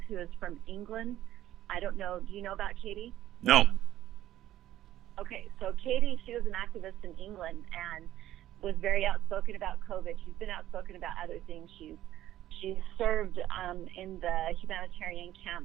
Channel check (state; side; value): quieter; left; 13.3 dB